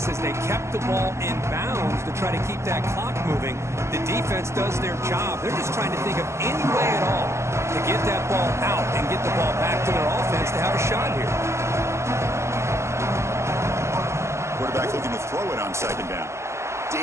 is they kept the ball in bounds to try to keep that clock moving. The defense does their job. They're just trying to think of any way at all to get that ball out and get the ball back to their offense to have a shot here. Quarterback looking to throw it on 2nd down.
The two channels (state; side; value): late; left; 0.13 ms